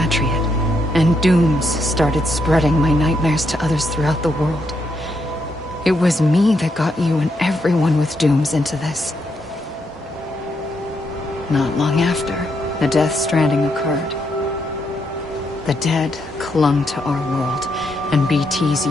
and dooms started spreading my nightmares to others throughout the world. It was me that got you and everyone with dooms into this. Not long after, the Death Stranding occurred. The dead clung to our world, and BTs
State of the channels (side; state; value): both; normal; correlation 0.79